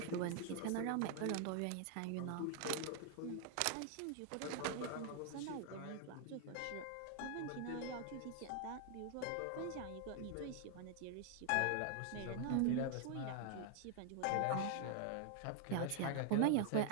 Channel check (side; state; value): both; different; correlation 0.00